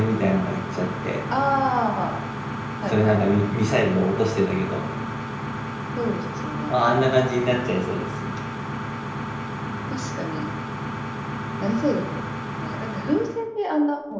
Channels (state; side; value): identical; both; correlation 1.00